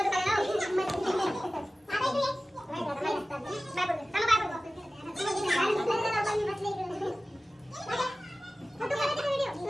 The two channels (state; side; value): normal; both; correlation 0.96